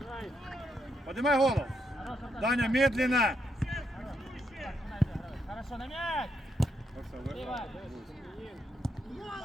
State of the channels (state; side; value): normal; both; correlation 0.79